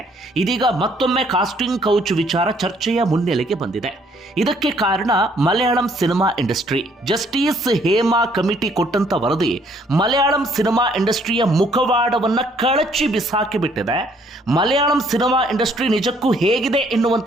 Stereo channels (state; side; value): normal; both; correlation 0.64